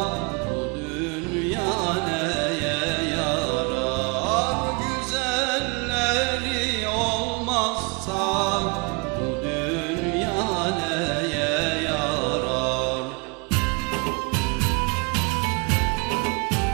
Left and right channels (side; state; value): left; quieter; 31.3 dB